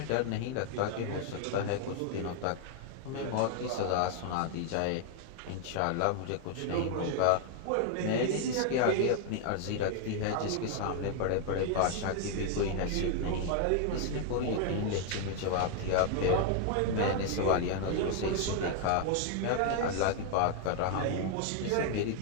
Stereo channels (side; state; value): both; different; correlation 0.00